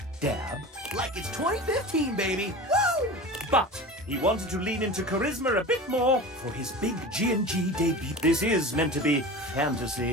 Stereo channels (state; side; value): normal; both; correlation 0.33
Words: dab? Like it's 2015, baby! Woo! But he wanted to lean into charisma a bit more for his big G&G debut. This is meant to be